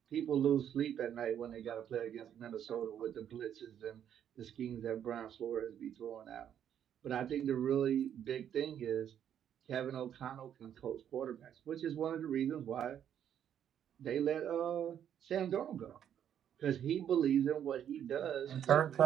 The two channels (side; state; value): left; quieter; 9.5 dB